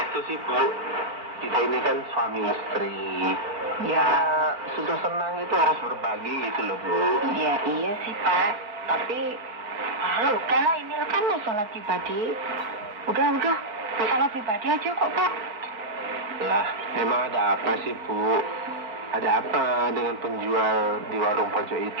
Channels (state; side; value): late; left; 4.4 ms